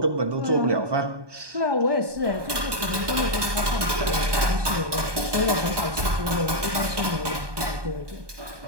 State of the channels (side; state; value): left; late; 1.2 ms